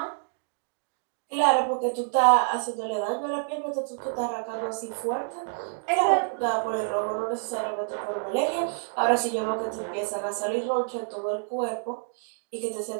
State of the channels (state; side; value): silent; left; digital silence